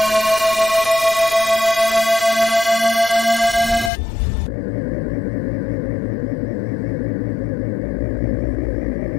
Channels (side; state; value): right; drops out; at 3.9 s